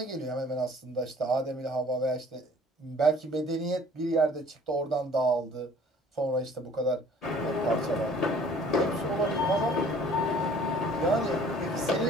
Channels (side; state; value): both; normal; correlation 0.53